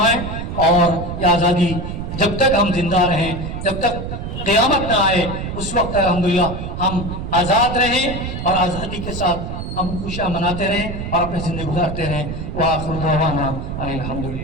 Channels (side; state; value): right; noise; rumble, 6 dB below the sound